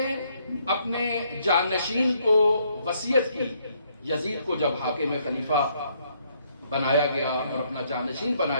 اپنے جانشین کو وصیت کی، یزید کو جب حاکم خلیفہ بنایا گیا اور اپنا جانشین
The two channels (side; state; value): both; inverted; correlation -0.70